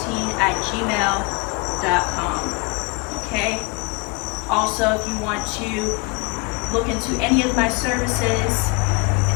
Okay. Also, if you want to look into any of my services,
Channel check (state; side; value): quieter; right; 28.7 dB